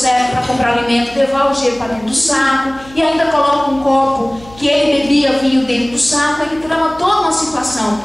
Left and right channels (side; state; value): left; noise; hum, 22 dB below the sound